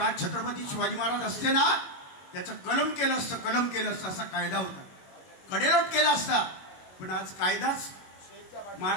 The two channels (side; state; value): right; late; 21 ms